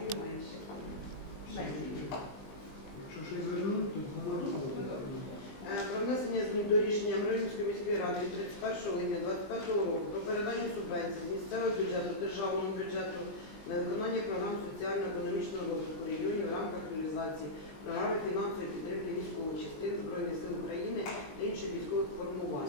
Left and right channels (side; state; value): right; late; 20 ms